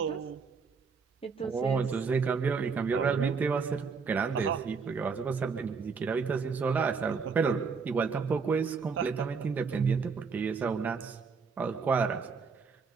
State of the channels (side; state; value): left; quieter; 5.3 dB